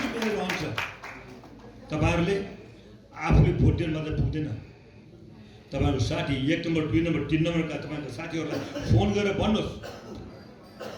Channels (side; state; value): both; identical; correlation 1.00